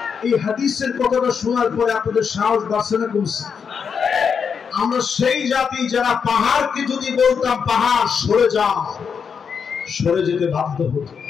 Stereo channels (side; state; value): right; quieter; 6.5 dB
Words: এই হাদিসের কথাটা শোনার পরে আপনাদের সাহস বাড়ছে না কমছে? আমরা সেই জাতি যারা পাহাড়কে যদি বলতাম পাহাড় সরে যাও, সরে যেতে বাধ্য হতো।